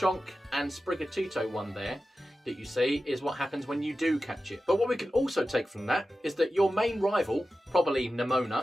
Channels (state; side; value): normal; both; correlation 0.93